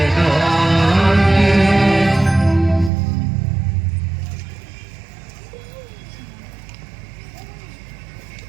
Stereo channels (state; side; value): drops out; left; at 2.9 s